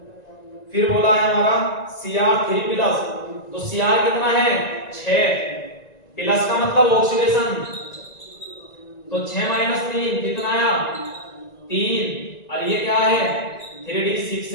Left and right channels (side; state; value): right; late; 1.9 ms